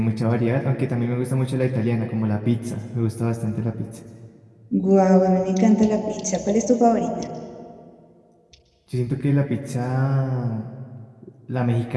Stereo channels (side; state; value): both; identical; correlation 1.00